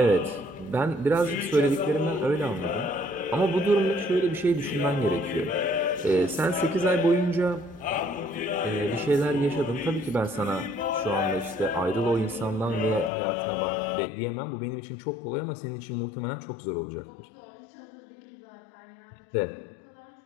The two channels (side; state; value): right; drops out; at 13.1 s